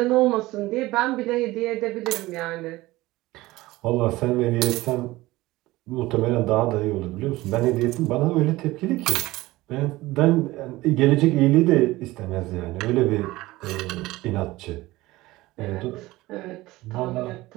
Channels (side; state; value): left; quieter; 18.8 dB